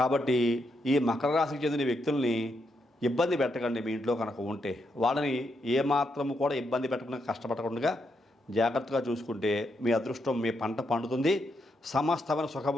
ఈ మకర రాశికి చెందిన వ్యక్తుల్ని ఇబ్బంది పెట్టకండి. మీ ఇంట్లో కనుక ఉంటే వాళ్ళని ఏమాత్రము కూడా ఇబ్బంది పెట్టకుండా, కష్టపడకుండా జాగ్రత్తగా చూసుకుంటే మీ అదృష్టం, మీ పంట పండుతుంది. సమస్తమైన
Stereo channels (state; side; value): normal; both; correlation 0.81